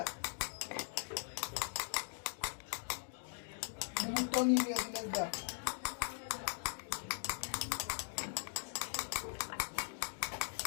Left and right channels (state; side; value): silent; right; digital silence